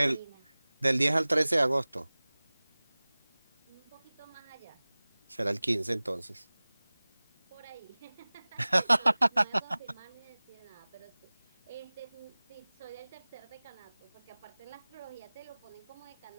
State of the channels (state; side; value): inverted; both; correlation -1.00